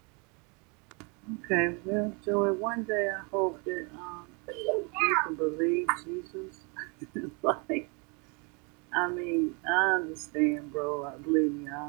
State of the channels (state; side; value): quieter; left; 32.6 dB